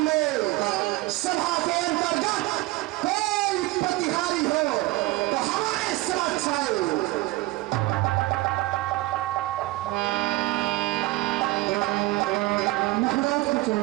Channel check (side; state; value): left; quieter; 19.9 dB